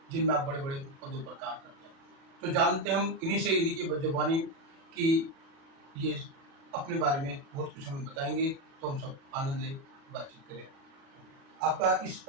जिनमें आप बड़े बड़े पदों पर कार्य करते हैं। तो जानते हैं हम इन्हीं से, इन्हीं की जबानी कि ये अपने बारे में बहुत कुछ हमें बताएंगे, तो हम सब आनंद लें, बातचीत करें। आपका इस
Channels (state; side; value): late; left; 37 ms